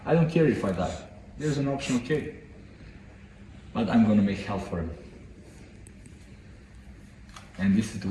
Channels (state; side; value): identical; both; correlation 1.00